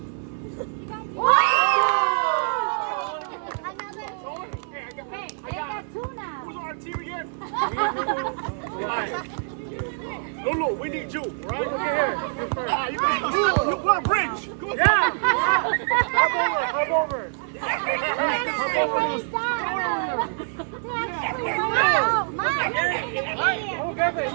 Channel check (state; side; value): silent; left; 62 dB below the other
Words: Hey, I got two now. Who's on our team again? Lulu, we need you, right? Look at here. You guys, you want a bridge? Yeah. Hop over.